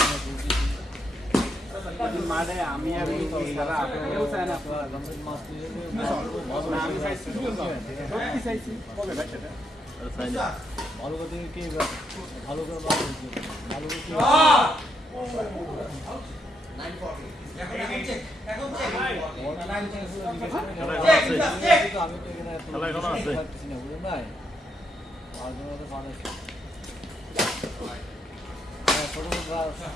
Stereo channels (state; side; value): normal; both; correlation 0.78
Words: মাঠে আমি আর সারা কেউ চায় না আমি চাইছি সত্যি চাইছি আর সাইনা ভালো করে কি ভালো করে ভালো করে এখন চেক আমি তো এখানে খেলা এখনো আছে পারতেছি না বুঝলেন ভাই আর জন্য তো মানুষ ছোট